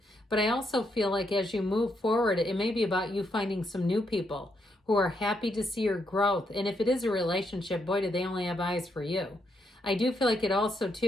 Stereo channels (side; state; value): both; normal; correlation 0.78